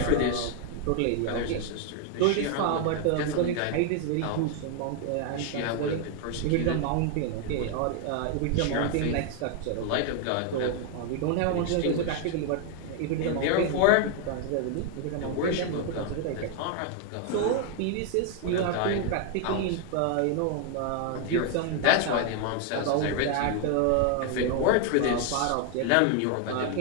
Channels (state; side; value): different; both; correlation 0.00